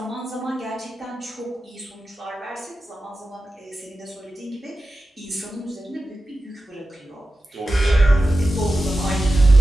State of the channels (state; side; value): normal; both; correlation 0.93